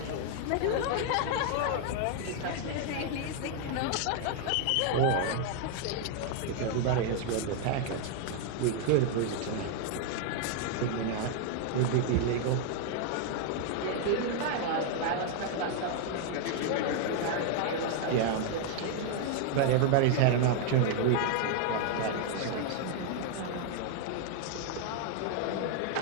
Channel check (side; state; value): both; different; correlation 0.00